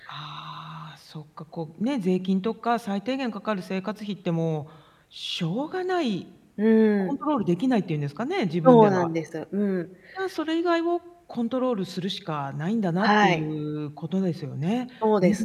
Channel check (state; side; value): identical; both; correlation 1.00